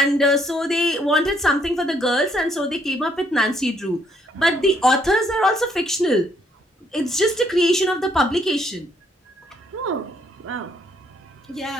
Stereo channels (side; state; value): both; normal; correlation 0.69